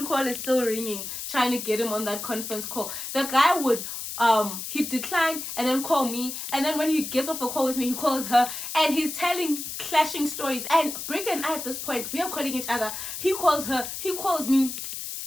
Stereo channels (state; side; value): noise; left; hiss, 7 dB below the sound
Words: call is still ringing, trying to get him on that conference call. The guy would he'd decline and then call me, and then when he gets off a call with me, he calls her, and he's telling clashing stories. And Brick and I, at this point, we are calling each other. He calls her, he calls me.